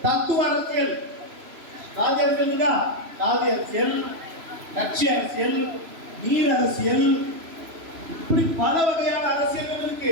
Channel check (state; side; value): late; left; 3.0 ms